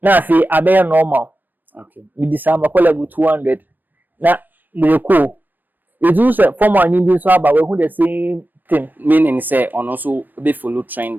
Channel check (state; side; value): late; left; 0.086 ms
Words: Na fi abaya normal. Okay. With the sum call level 200. Na the cool. It's also formal and so about who the same thing. Meaning say on also be follow